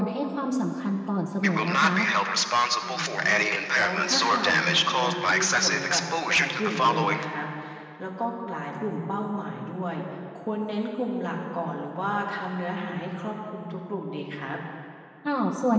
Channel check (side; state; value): both; identical; correlation 1.00